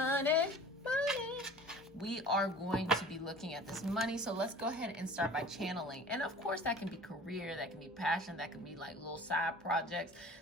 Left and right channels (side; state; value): both; normal; correlation 0.44